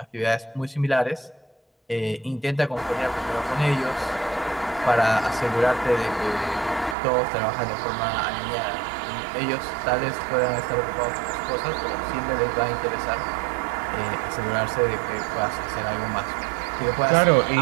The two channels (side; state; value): left; drops out; at 7.0 s